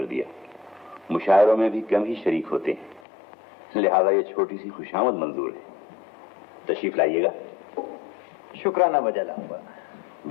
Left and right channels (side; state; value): right; drops out; at 3.0 s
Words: दिया। मुशायरों में भी कम ही शरीक होते हैं, लिहाजा ये छोटी सी खुशामद मंजूर है। तशरीफ लाइएगा। शुक्राना बजा लाऊंगा।